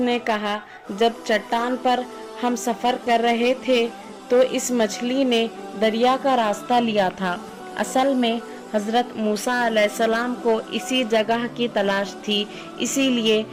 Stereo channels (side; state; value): both; identical; correlation 1.00